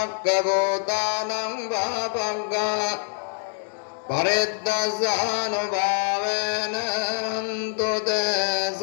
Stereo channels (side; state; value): right; silent; 62 dB below the other